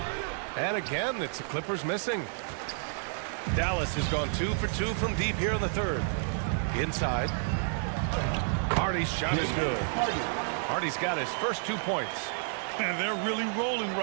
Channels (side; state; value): left; silent; 58 dB below the other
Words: And again, it's the Clippers missing. Dallas has gone 2 for 2 from deep here in the third. Inside. Hardy's shot is good. Hardy's got his first 2 points. And they're really rolling